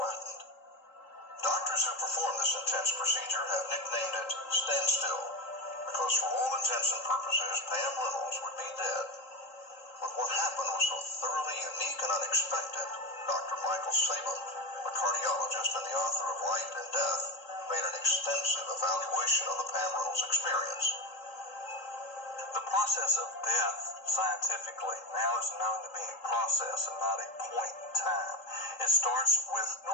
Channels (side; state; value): right; late; 3.8 ms